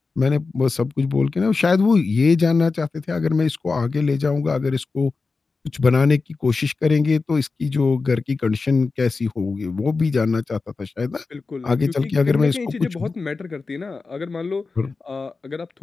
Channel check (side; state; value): right; quieter; 4.2 dB